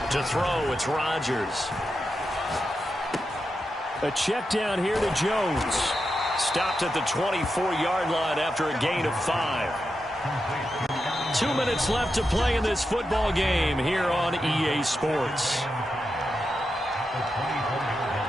To throw, it's Rodgers. A check down here to Jones. Stopped at the 24-yard line after a gain of 5. 2 minutes left to play in this football game here on EA Sports.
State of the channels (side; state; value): both; normal; correlation 0.88